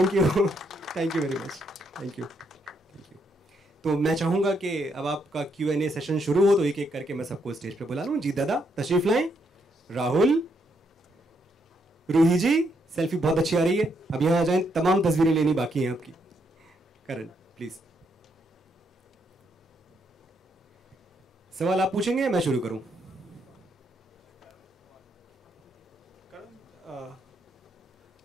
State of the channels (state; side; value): normal; both; correlation 0.76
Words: you very much, thank you. तो मैं चाहूंगा कि अब आपका Q&A सेशन शुरू हो, तो एक एक करके मैं सबको स्टेज पे बुला लूं. जीत दादा तशरीफ लाएं. राहुल, रूही जी, सेल्फी बहुत अच्छी आ रही है, अब यहां आ जाएं, तमाम तस्वीरें लेनी बाकी हैं आपकी. करण प्लीज. सवाल आप पूछेंगे, मैं शुरू करूं?